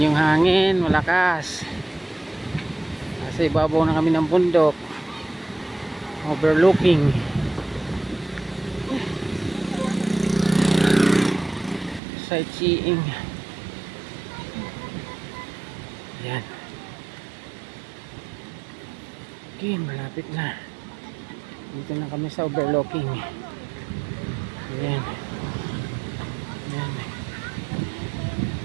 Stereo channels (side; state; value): left; drops out; at 12.0 s